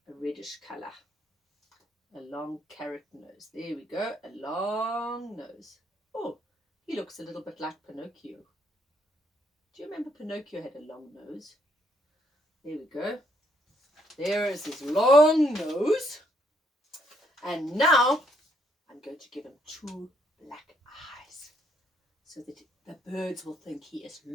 a reddish colour. A long carrot nose. There we go. A long nose. Oh, he looks a little bit like Pinocchio. Do you remember Pinocchio had a long nose? There we go. There is his long nose. And now I'm going to give him 2 black eyes so that the birds will think he is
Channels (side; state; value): both; normal; correlation 0.71